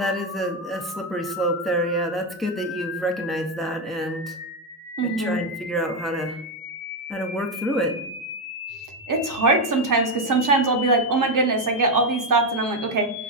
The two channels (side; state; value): both; normal; correlation 0.07